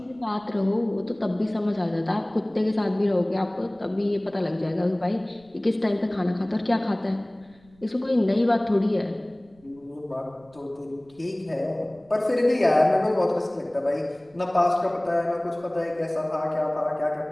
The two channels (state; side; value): noise; right; rumble, 29 dB below the sound